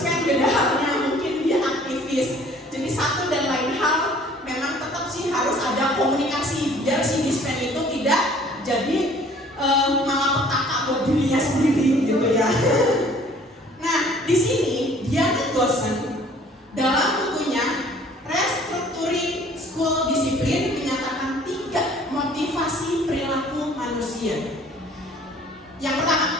beda halnya, mungkin dia aktivis. Jadi satu dan lain hal memang tetap sih harus ada komunikasi biar si dispen itu tidak jadi malapetaka buat dirinya sendiri gitu ya. Nah di sini Diana Gosen dalam bukunya Restructuring School Discipline menyatakan 3 motivasi perilaku manusia. Yang pertama,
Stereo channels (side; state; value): both; normal; correlation 0.54